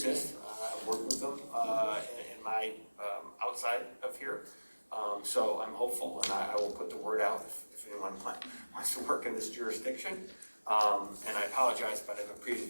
I've worked with them in my outside of here. So I'm hopeful, and I will put the word out if anyone wants to work in this jurisdiction. And I apologize, but I have a previous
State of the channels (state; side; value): inverted; both; correlation -1.00